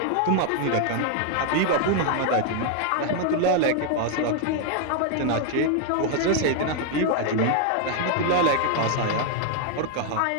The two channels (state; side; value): different; both; correlation 0.00